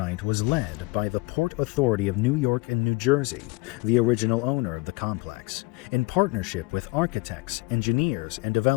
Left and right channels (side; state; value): right; quieter; 23.9 dB